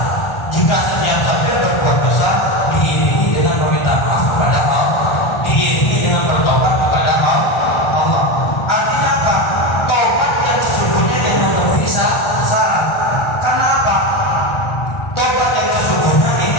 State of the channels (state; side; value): late; right; 1.4 ms